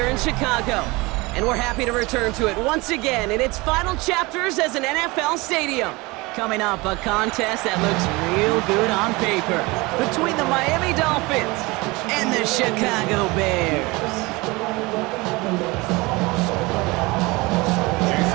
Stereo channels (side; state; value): left; quieter; 23.7 dB